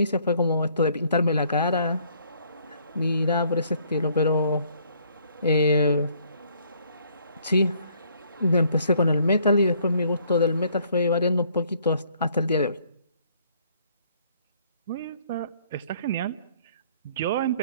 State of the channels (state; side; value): inverted; both; correlation -0.63